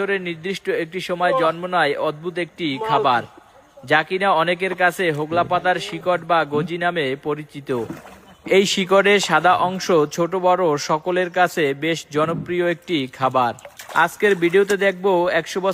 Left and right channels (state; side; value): identical; both; correlation 1.00